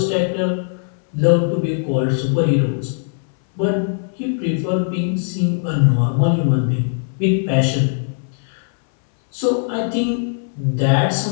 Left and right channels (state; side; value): silent; right; 66 dB below the other